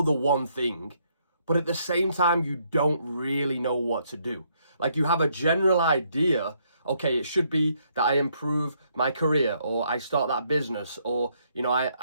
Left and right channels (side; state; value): both; inverted; correlation -0.72